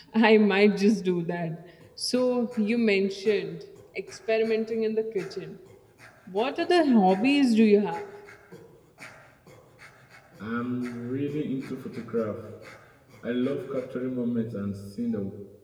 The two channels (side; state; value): both; identical; correlation 1.00